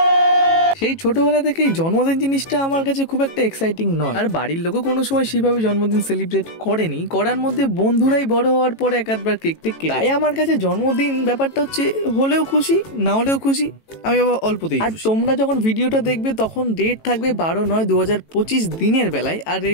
সেই ছোটবেলা থেকেই জন্মদিন জিনিসটা আমার কাছে খুব একটা এক্সাইটিং নয়, আর বাড়ির লোকও কোনো সময় সেভাবে জন্মদিন সেলিব্রেট করেনি। করার মধ্যে বন্ধুরাই বড় হওয়ার পরে এক আধবার কেক টেক কেটে। তাই আমার কাছে জন্মদিন ব্যাপারটা হচ্ছে হলেও খুশি, না হলেও খুশি, আমি বাবা অল্পতেই। আর তোমরা যখন ভিডিওটা দেখবে তখন ডেট থাকবে 12/9/2025 দিনের বেলায়, আর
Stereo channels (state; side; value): late; right; 18 ms